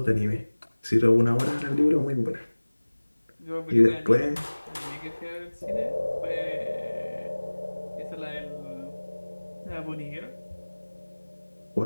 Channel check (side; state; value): both; inverted; correlation -1.00